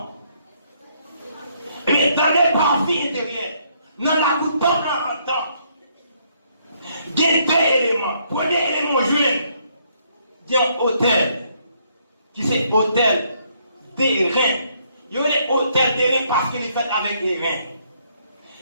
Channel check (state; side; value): inverted; both; correlation -0.70